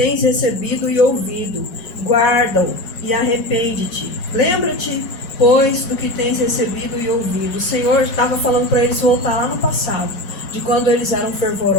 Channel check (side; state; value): right; late; 5.5 ms